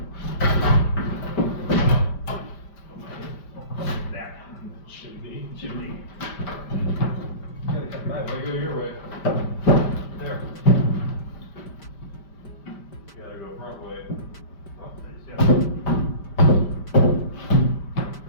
That chimney. Gotta come back. Way go your way. There. Gotta go front way. Oh, there's yeah.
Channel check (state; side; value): late; right; 5.1 ms